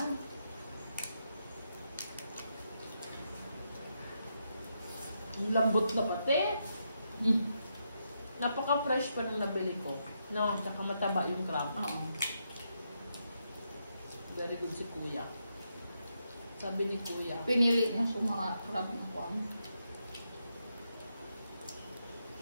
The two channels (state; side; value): inverted; both; correlation -0.82